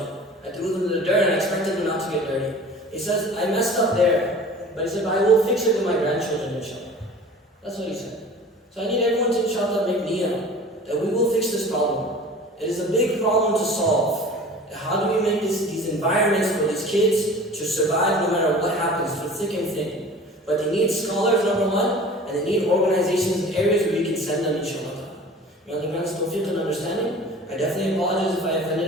I threw them in the dirt and I expected them not to get dirty. He says, I messed up there. But he said, I will fix it with my grandchildren, inshallah. That's what he said. So I need everyone to, inshallah, make niyyah that we will fix this problem. It is a big problem to solve. How do we make these environments for these kids to survive no matter what happens, through thick and thin? But they need scholars, number one, and they need organizations and areas where you can send them, inshallah. May Allah grant us tawfiq and understanding. I definitely apologize if I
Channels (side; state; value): both; normal; correlation 0.42